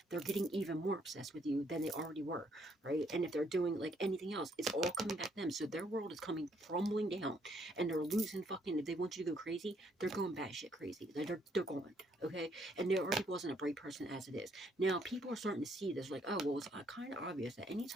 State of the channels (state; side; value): normal; both; correlation 0.69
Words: they're getting even more obsessed with you than they already were, right? And if they're doing like anything else, it's all coming back to them. So their world is coming crumbling down, and they're losing fucking, if they want you to go crazy, they're going batshit crazy. They're going, okay? And there already wasn't a bright person as it is. Now people are starting to see this, like, oh, well, it's kind of obvious that